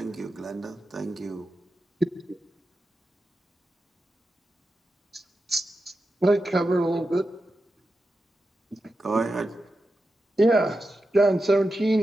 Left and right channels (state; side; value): normal; both; correlation 0.90